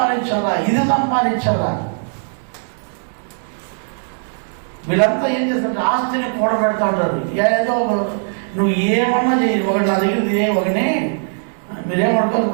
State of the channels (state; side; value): silent; left; digital silence